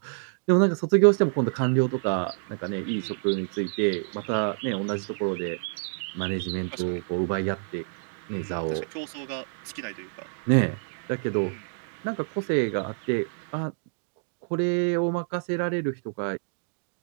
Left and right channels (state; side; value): silent; left; digital silence